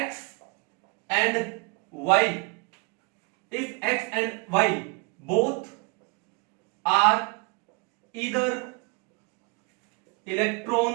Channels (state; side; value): quieter; left; 31.4 dB